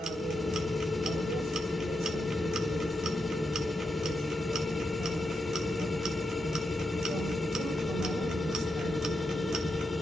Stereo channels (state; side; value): normal; both; correlation 0.85